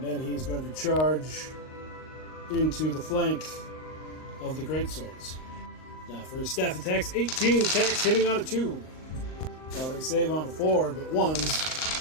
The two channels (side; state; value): right; late; 38 ms